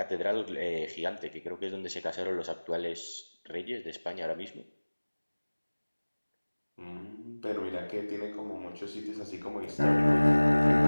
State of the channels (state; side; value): inverted; both; correlation -1.00